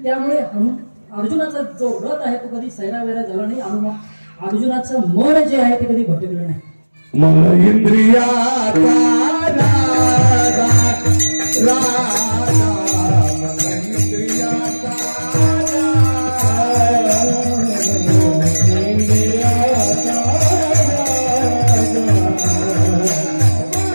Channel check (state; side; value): inverted; both; correlation -1.00